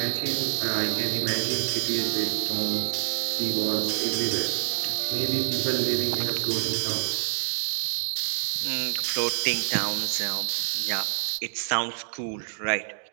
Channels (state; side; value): silent; left; digital silence